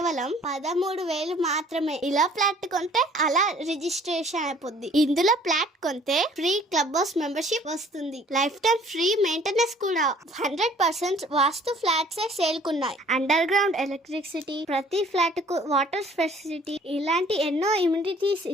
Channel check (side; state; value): both; normal; correlation 0.55